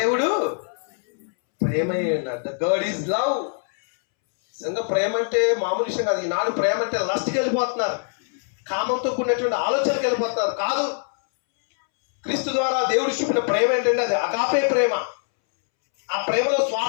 ప్రేమై ఉన్నాడు. The God is love. నిజంగా ప్రేమ అంటే మామూలు విషయం కాదు. ఈనాడు ప్రేమ అంటే లస్ట్కి వెళ్ళిపోతున్నారు, కామంతో కూడినటువంటి ఆలోచనకి వెళ్ళిపోతున్నారు. కాదు, క్రీస్తు ద్వారా దేవుడు చూపిన ప్రేమ ఏంటంటే అది అగాపే ప్రేమ. ఆ ప్రేమలో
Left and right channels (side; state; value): right; silent; 63 dB below the other